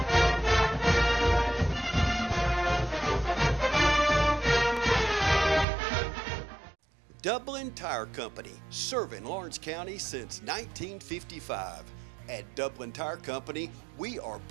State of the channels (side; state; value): left; drops out; at 5.7 s